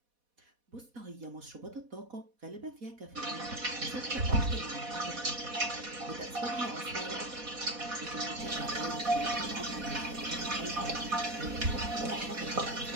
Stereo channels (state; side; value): late; left; 4.1 ms